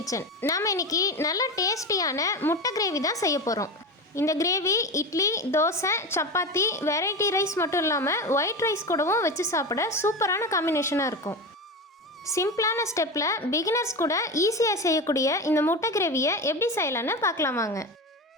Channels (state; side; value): normal; both; correlation 0.22